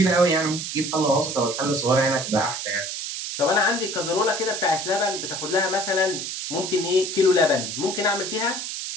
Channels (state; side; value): noise; right; hiss, 5 dB below the sound